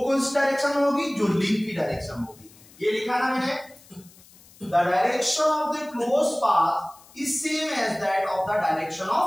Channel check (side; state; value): left; noise; hiss, 25 dB below the sound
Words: सी डायरेक्शन में होगी? जो लिंक की डायरेक्शन में होगी। ये लिखा ना मैंने, the direction of the close path is same as that of the direction